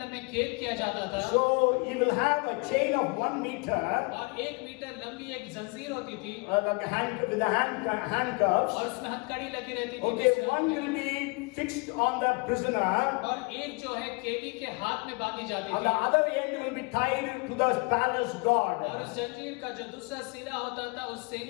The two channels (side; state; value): right; quieter; 29.5 dB